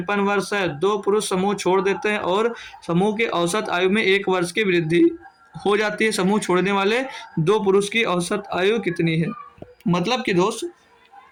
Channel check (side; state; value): both; identical; correlation 1.00